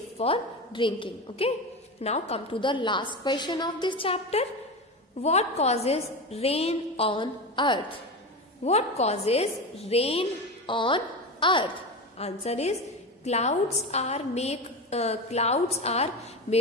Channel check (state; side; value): normal; both; correlation 0.23